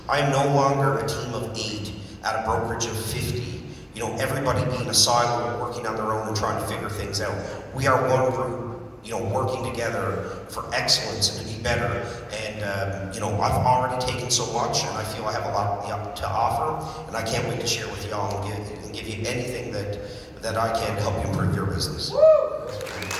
I am no longer a team of 8 at a brokerage of 50. Everybody being a silo, working on their own and trying to figure things out. We are one group, working together for excellence and to be better. And, I've already taken so much, and I feel I have a lot to offer, and I can't wait to share with y'all and give you anything that I can to help you improve your business.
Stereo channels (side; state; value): both; identical; correlation 1.00